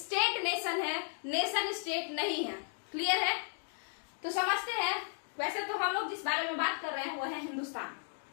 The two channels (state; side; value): silent; right; 55 dB below the other